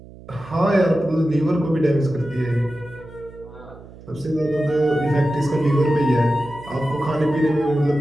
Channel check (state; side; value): noise; right; hum, 19 dB below the sound